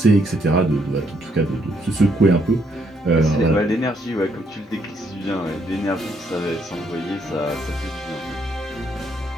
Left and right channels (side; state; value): both; normal; correlation 0.72